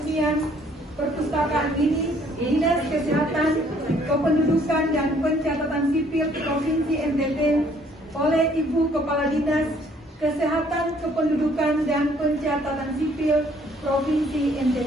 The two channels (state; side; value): normal; both; correlation 0.62